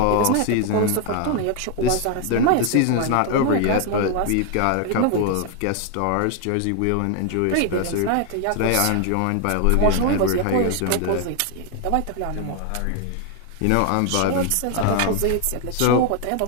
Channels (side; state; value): both; different; correlation 0.00